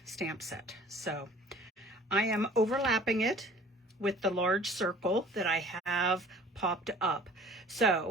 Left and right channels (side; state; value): both; normal; correlation 0.49